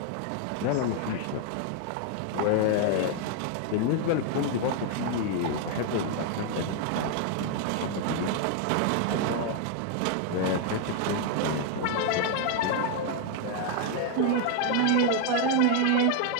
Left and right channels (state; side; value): different; both; correlation 0.00